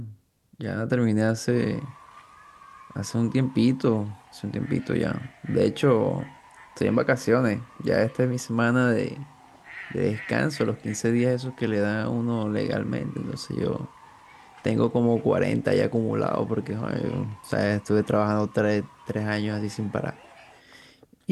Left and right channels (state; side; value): identical; both; correlation 1.00